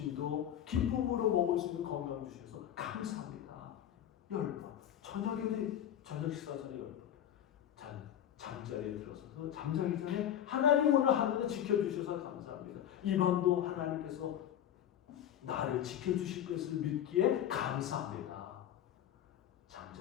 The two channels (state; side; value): quieter; right; 10.5 dB